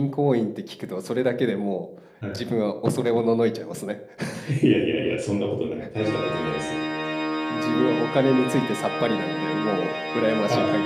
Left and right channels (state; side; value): identical; both; correlation 1.00